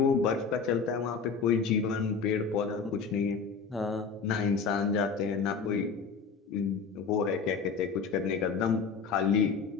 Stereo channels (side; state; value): right; quieter; 5.4 dB